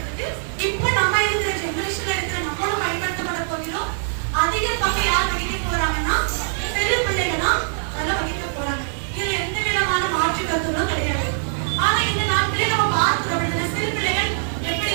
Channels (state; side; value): silent; left; digital silence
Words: இப்ப நம்ம இருக்கிற ஜெனரேஷன்ல இருக்கிற நம்மளும் பயன்படுத்தப்பட போகிறோம். அதிக பங்கு யார் வகிக்க போறாங்கன்னா சிறு பிள்ளைகள் தான் நல்லா வகிக்க போறாங்க. இதுல எந்த விதமான மாற்று கருத்துகளும் கிடையாது. ஆனா இந்த நாட்களே நம்ம பார்க்கிறோம், சிறு பிள்ளைகள்